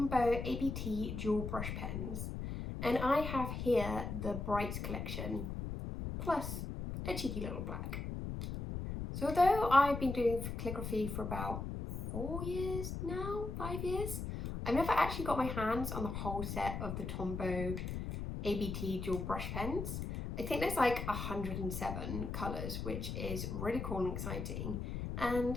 ABT dual brush pens, and I have here the Brights collection, plus a cheeky little black. So although I've been doing calligraphy for about 4 years now, 5 years, I've never actually got my hands on the whole set of the Tombow ABT dual brush pens. I think there's like 107 colours, which is really cool and exciting, and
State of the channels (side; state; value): left; noise; rumble, 4 dB below the sound